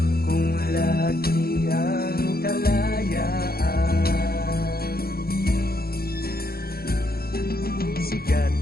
kong lagi ang kalayaan. Sikat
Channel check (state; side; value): late; right; 0.44 ms